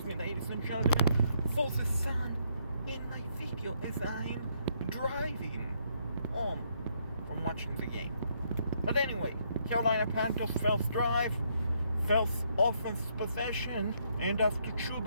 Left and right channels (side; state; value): both; inverted; correlation -0.72